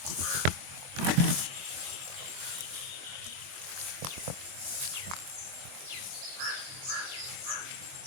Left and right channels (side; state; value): left; late; 22 ms